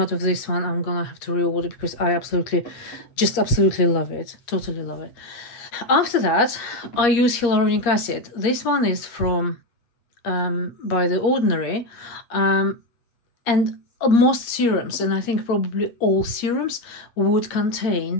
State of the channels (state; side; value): late; right; 8.3 ms